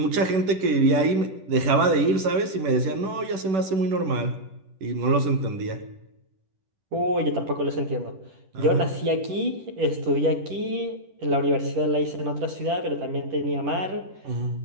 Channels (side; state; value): left; late; 10 ms